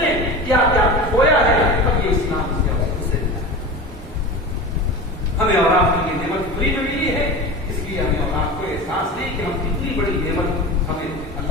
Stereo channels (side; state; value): both; normal; correlation 0.30